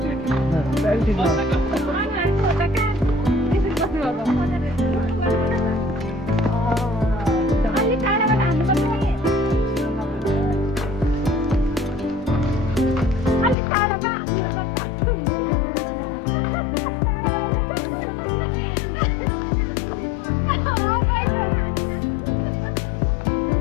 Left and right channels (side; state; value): right; drops out; at 13.6 s